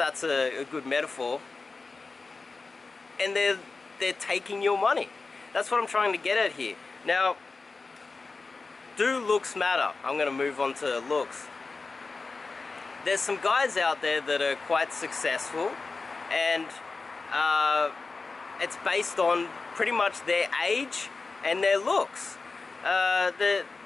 a good metaphor. And they're taking your money. That's what I'm trying to get at here. Now, do looks matter? I'm going to move on to looks. There's some guys out there that are quite successful, and it's based on pretty much their age and their looks. They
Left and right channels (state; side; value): quieter; right; 4.0 dB